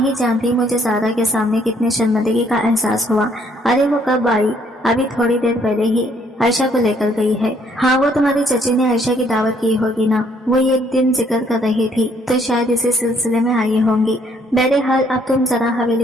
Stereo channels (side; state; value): both; normal; correlation 0.66